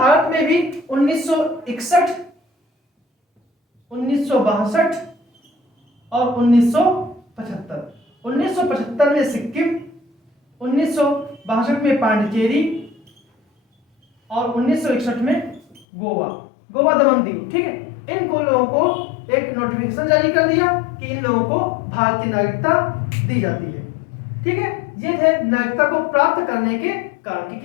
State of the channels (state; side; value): drops out; right; at 15.9 s